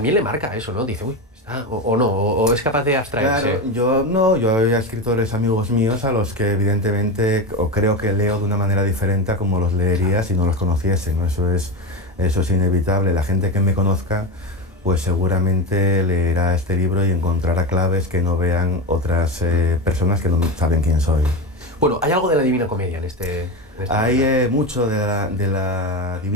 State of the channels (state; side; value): normal; both; correlation 0.18